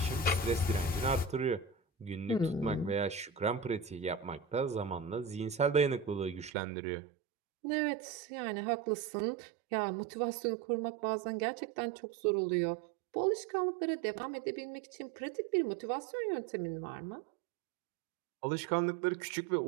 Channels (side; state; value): left; drops out; at 6.5 s